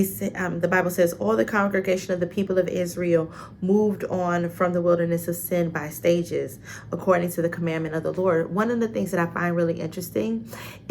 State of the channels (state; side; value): identical; both; correlation 1.00